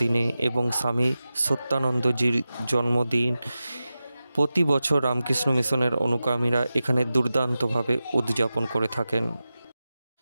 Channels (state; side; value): inverted; both; correlation -0.94